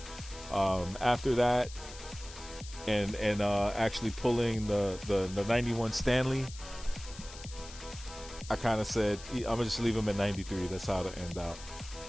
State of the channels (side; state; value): left; noise; hiss, 15 dB below the sound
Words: after that, and actually pulling the 91 Stanley, I kind of said I'm gonna just leave him at 93. That's how to end out.